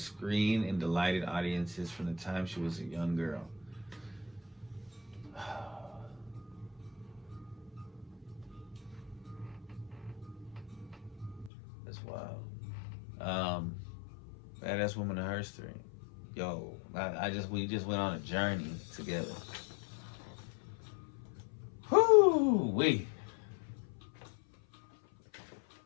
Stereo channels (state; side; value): drops out; right; at 11.5 s